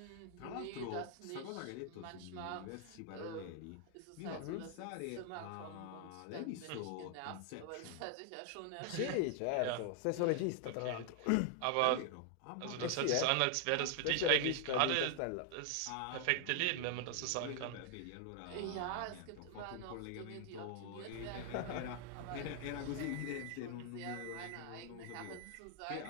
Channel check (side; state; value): both; different; correlation 0.00